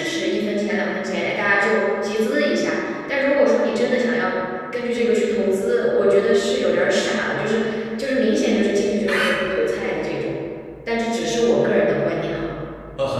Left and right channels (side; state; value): both; identical; correlation 1.00